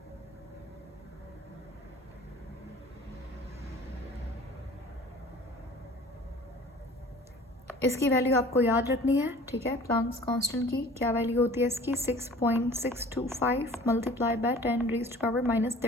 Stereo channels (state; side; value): normal; both; correlation 0.46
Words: इसकी वैल्यू आपको याद रखनी है, ठीक है। प्लांक्स कांस्टेंट की क्या वैल्यू होती है इसकी, 6.625 मल्टीप्लाई बाय